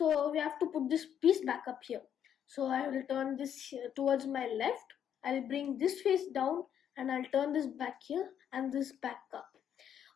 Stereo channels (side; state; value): right; quieter; 9.2 dB